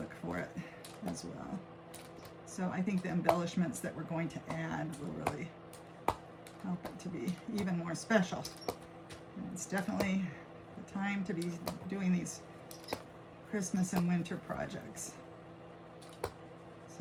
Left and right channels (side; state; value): both; identical; correlation 1.00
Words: for it as well. So I think the embellishments that we're going to add will really help it to be even more special. And it's definitely the time to be doing these Christmas and winter projects.